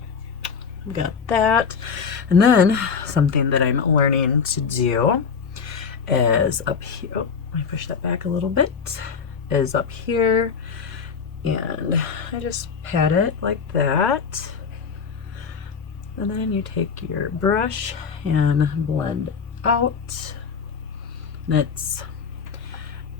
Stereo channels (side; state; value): right; quieter; 6.0 dB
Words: I've got that. And then, something that I'm learning to do is up here. Oh, let me push that back a little bit. Is up here. And I just pat it like that. And then you take your brush and blend out. And it's,